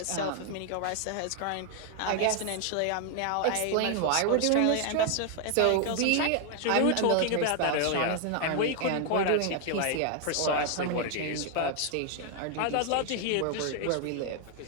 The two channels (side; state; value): both; different; correlation 0.00